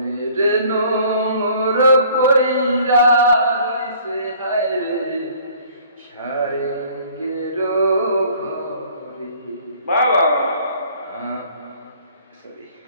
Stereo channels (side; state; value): both; inverted; correlation -0.55